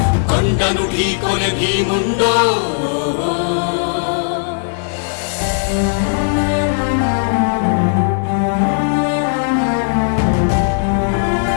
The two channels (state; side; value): silent; right; digital silence